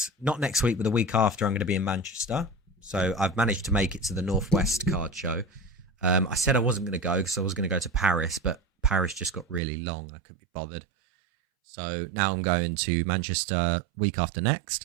not next week, but the week after. I'm going to be in Manchester. So I've managed to make it to the Northwest card show. I said I wasn't going to go because I was going to go to Paris, but Paris just got really long. I couldn't be bothered. So now I'm going to Manchester week after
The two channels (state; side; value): drops out; left; at 9.6 s